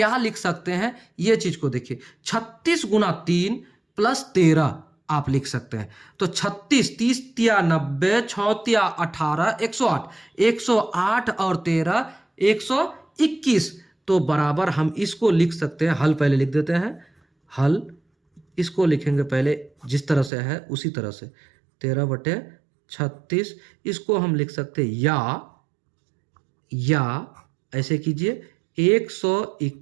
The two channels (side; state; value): left; drops out; at 20.3 s